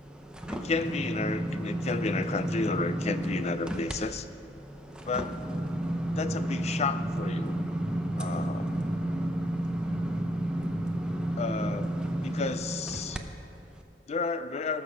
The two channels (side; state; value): both; normal; correlation 0.68